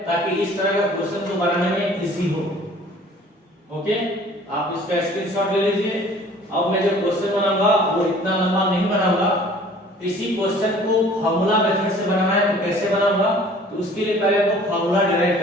ताकि इस तरह का क्वेश्चन को बनाने में इजी हो। ओके, आप इसका स्क्रीनशॉट ले लीजिए। अब मैं जो क्वेश्चन बनाऊंगा वो इतना लंबा नहीं बनाऊंगा, इसी क्वेश्चन को फार्मूला मेथड से बनाना है, तो कैसे बनाऊंगा, तो उसके लिए पहले आपको फार्मूला डिराइव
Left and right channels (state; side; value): normal; both; correlation 0.51